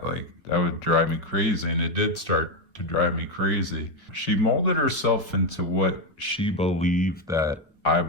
Like, that would drive me crazy. And it did start to drive me crazy. She molded herself into what she believed that I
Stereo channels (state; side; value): normal; both; correlation 0.07